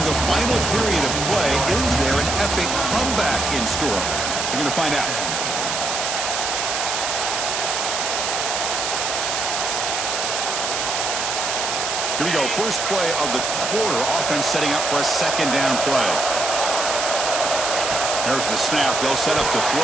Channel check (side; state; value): right; noise; hiss, 1 dB below the sound